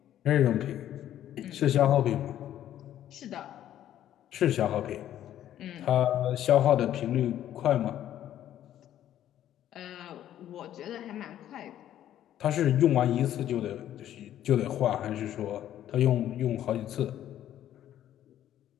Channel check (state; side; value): quieter; right; 11.7 dB